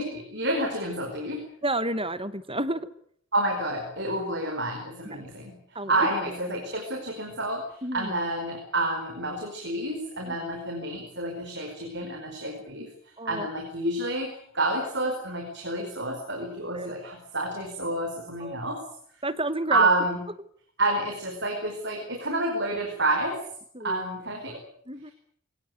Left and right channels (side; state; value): both; normal; correlation -0.19